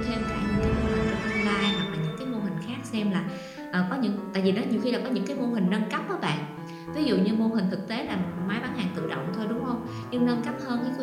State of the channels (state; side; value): identical; both; correlation 1.00